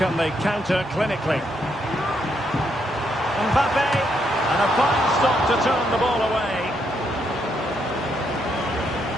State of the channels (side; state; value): both; normal; correlation 0.77